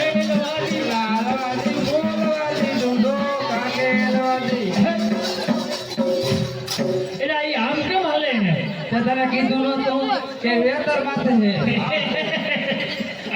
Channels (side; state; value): both; identical; correlation 1.00